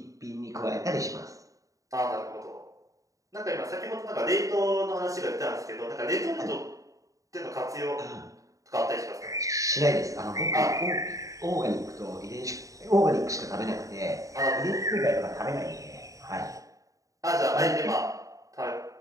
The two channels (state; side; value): late; left; 0.16 ms